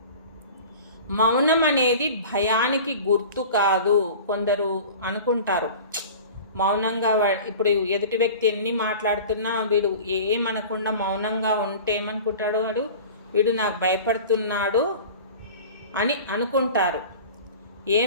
మౌనం అనేది భయానికి గుర్తు కాదు. కొందరు అనుకుంటారు మౌనంగా, ఇప్పుడు ఎదుటి వ్యక్తి ఎన్ని మాట్లాడుతున్నా వీడు ఏమనకుండా మౌనంగా ఉంటే ఏమనుకుంటాడు, వీడు నాకు భయపడుతున్నాడు అని అనుకుంటారు.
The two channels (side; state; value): both; inverted; correlation -0.39